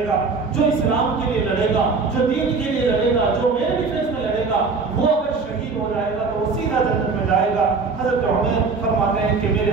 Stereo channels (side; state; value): left; quieter; 4.5 dB